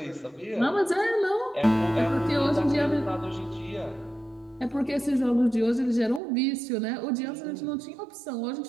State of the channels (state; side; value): drops out; left; at 6.2 s